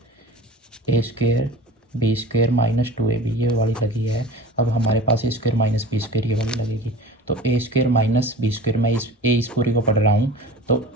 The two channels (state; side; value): normal; both; correlation 0.38